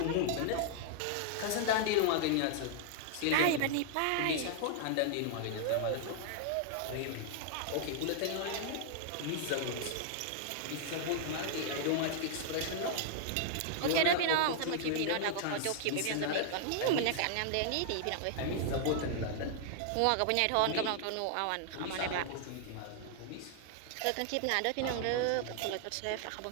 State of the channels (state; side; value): different; both; correlation -0.01